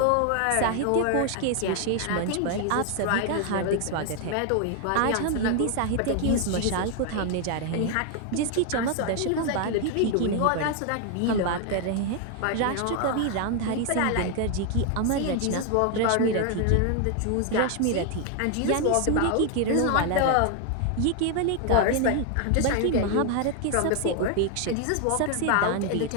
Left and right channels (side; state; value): both; different; correlation 0.00